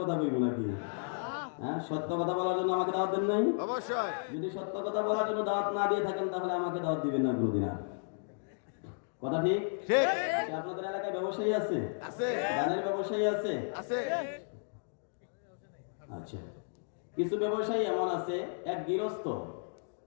বলবো নাকি? হ্যাঁ, সত্য কথা বলার জন্য আমাকে দাওয়াত দেন নাই? অবশ্যই। যদি সত্য কথা বলার জন্য দাওয়াত না দিয়ে থাকেন তাহলে আমাকে দাওয়াত দিবেন না কোনোদিন আর। কথা ঠিক? আপনাদের এলাকায় ব্যবসায়ী আছে? আছে। ধানের ব্যবসায়ী আছে? আছে। আচ্ছা, কিছু ব্যবসায়ী এমন আছে, এক গৃহস্থ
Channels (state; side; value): silent; right; digital silence